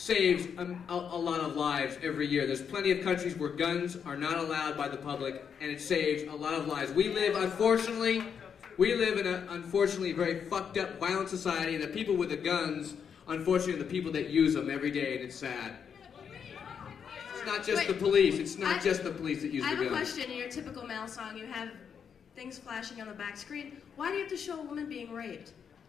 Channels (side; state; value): right; quieter; 7.2 dB